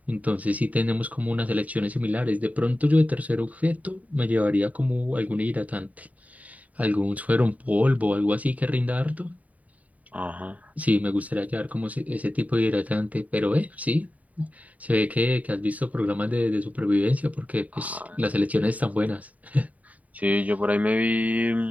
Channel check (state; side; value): late; left; 0.071 ms